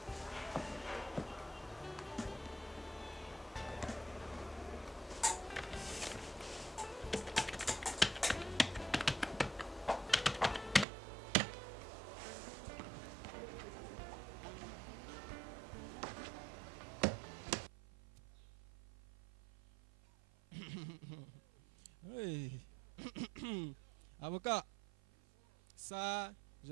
Oui. Avocat, ça, je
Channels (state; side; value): drops out; left; at 10.9 s